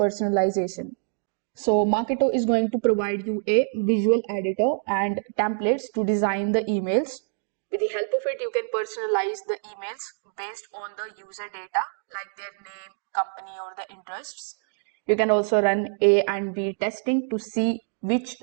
So Marketo is going to provide you a visual editor and templates to design the emails. With the help of it, you can personalize the emails based on the user data like their name, company, or the interests. You can also run A and B testing to see which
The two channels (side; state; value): left; silent; digital silence